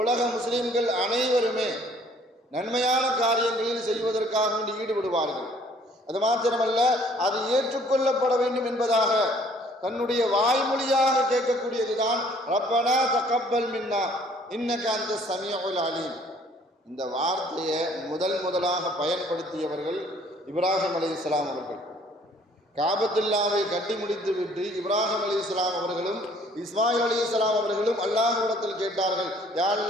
முஸ்லிம்கள் அனைவருமே நன்மையான காரியங்களில் செய்வதற்காக வேண்டி ஈடுபடுவார்கள். அது மாத்திரமல்ல, அது ஏற்றுக்கொள்ளப்பட வேண்டும் என்பதாக தன்னுடைய வாய்மொழியாக கேட்கக்கூடியதுதான் ரப்பனா தகப்பல் மின்னா இன்னக அந்த ஸமீஉல் அலீம். இந்த வார்த்தையை முதலாக பயன்படுத்தியவர்கள் இப்ராஹிம் அலைஹிஸ்ஸலாம் அவர்கள். காபத்துல்லாவை கட்டி முடித்து விட்டு இப்ராஹிம் அலைஹிஸ்ஸலாம் அவர்களும் இஸ்மாயில் அலைஹிஸ்ஸலாம் அவர்களும் அல்லாஹ்விடத்தில் கேட்டார்கள், யா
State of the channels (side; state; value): both; normal; correlation 0.58